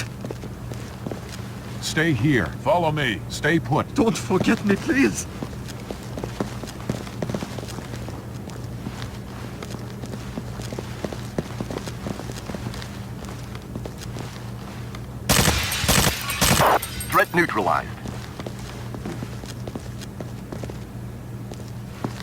Stay here. Follow me. Stay put. Don't forget me, please. Threat neutralized.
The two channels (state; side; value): identical; both; correlation 1.00